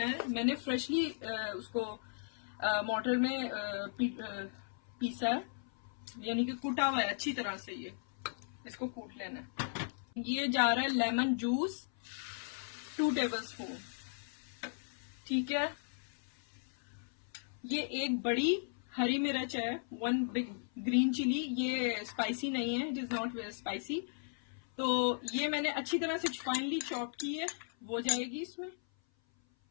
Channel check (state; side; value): silent; right; 53 dB below the other